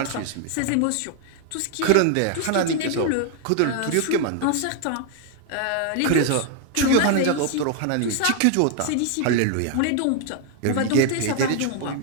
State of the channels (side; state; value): both; different; correlation 0.00